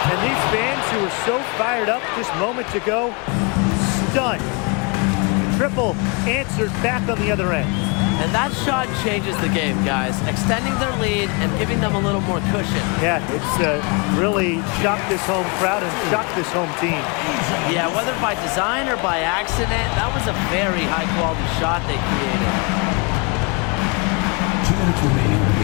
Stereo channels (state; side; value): quieter; right; 31.9 dB